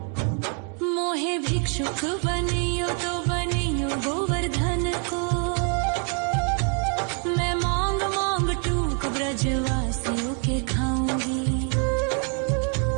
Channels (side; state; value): left; quieter; 38.7 dB